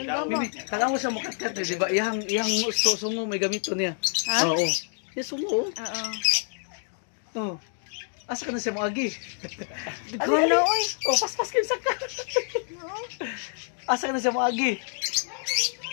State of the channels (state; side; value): silent; right; digital silence